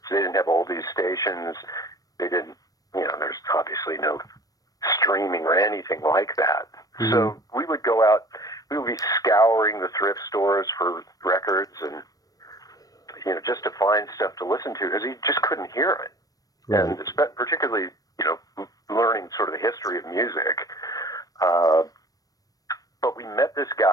They didn't have oldies stations. They didn't, there's obviously no streaming or anything like that. Mm-hmm. So we would go out, we would be scouring the thrift stores for records and, just to find stuff to listen to because you just couldn't hear it. Right. And particularly, learning sort of the history of music. But we met this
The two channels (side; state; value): right; late; 0.18 ms